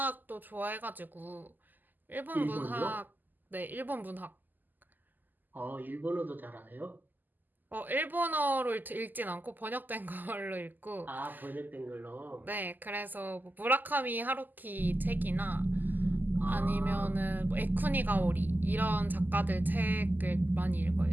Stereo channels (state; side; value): late; left; 0.086 ms